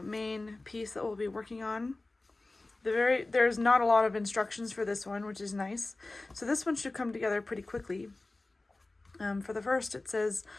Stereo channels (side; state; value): right; quieter; 3.1 dB